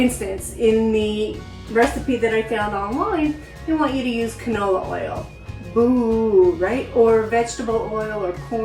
in the recipe that I found online, they want you to use canola oil. Boo, right? Or vegetable oil or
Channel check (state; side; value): identical; both; correlation 1.00